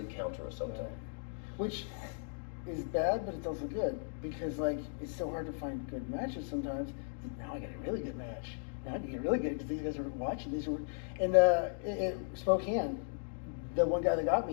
counter Osoto. Which is bad, but it's also good, because like it's so hard to find good matches sometimes. Now I got a really good match. Now I can get really good because these guys are watching. And Spokane, the one guy that got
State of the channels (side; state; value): right; silent; digital silence